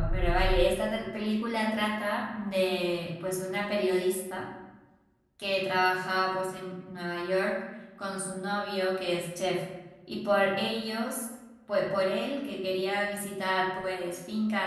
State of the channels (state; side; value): identical; both; correlation 1.00